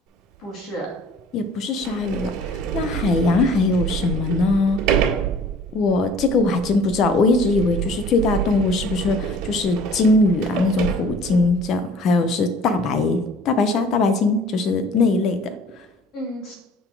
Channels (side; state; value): both; normal; correlation 0.50